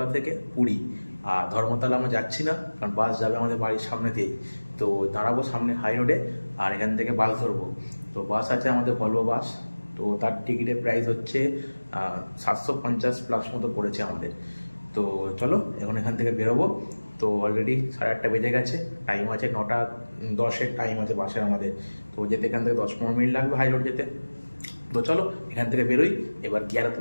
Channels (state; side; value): inverted; both; correlation -1.00